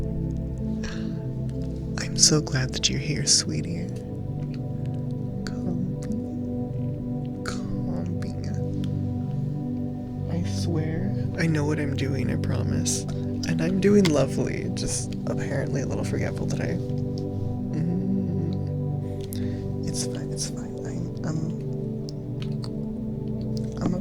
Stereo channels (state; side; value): identical; both; correlation 1.00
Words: I'm so glad that you're here, sweetie. Copy. what I'm doing, I promise. And I'm doing lovely, just apparently a little forgetful today. It's fine, it's fine. I'm a